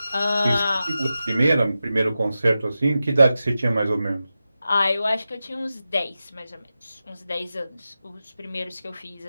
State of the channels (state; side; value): inverted; both; correlation -0.93